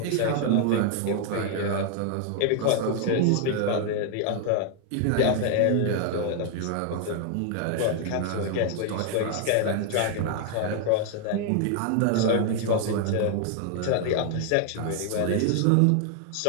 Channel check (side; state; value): both; different; correlation 0.00